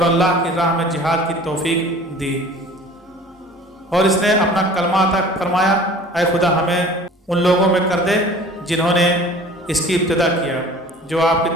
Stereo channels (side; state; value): both; normal; correlation 0.46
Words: اللہ کی راہ میں جہاد کی توفیق دی اور اس نے اپنا کلمہ عطا فرمایا۔ اے خدا ہمیں ان لوگوں میں کر دے جنہوں نے اس کی ابتدا کیا جو آپ کی